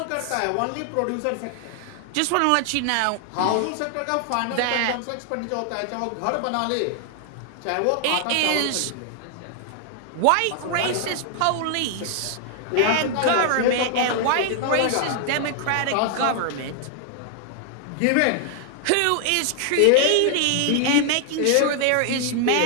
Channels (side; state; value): both; different; correlation 0.00